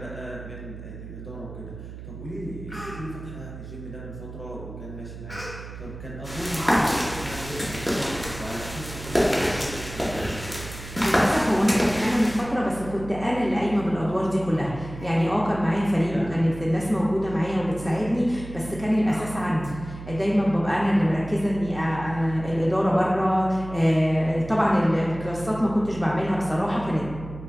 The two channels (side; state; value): right; noise; hum, 12 dB below the sound